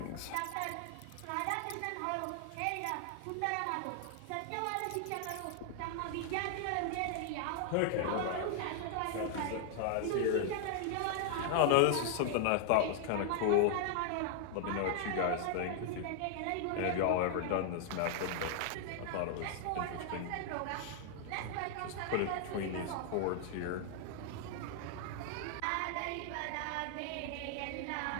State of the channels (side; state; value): both; different; correlation 0.00